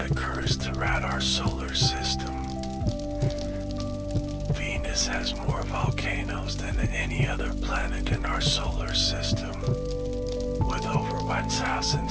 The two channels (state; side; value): identical; both; correlation 1.00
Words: occurs throughout our solar system. Venus has more volcanoes than any other planet in our solar system, with over